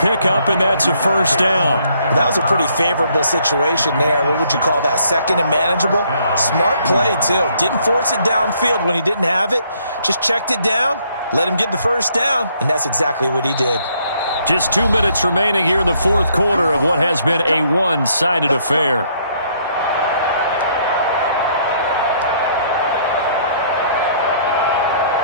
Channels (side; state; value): both; inverted; correlation -0.67